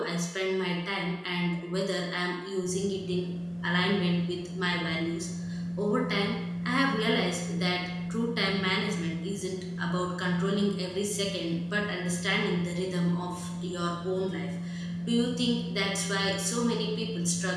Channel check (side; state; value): both; identical; correlation 1.00